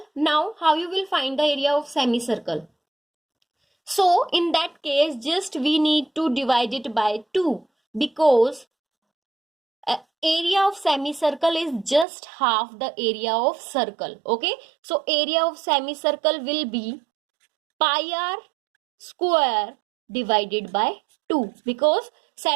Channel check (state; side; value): drops out; left; at 12.1 s